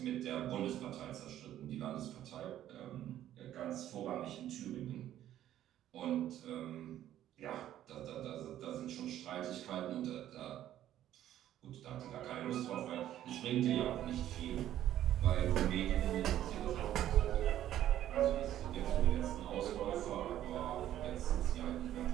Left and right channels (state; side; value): quieter; left; 12.1 dB